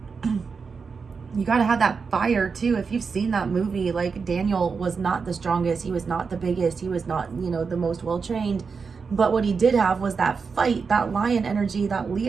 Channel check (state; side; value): quieter; left; 5.3 dB